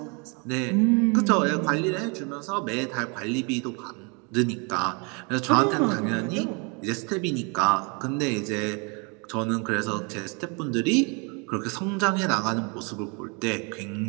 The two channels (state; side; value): quieter; left; 32.9 dB